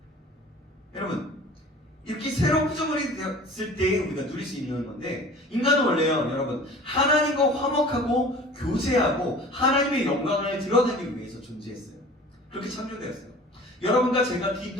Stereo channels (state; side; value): normal; both; correlation 0.43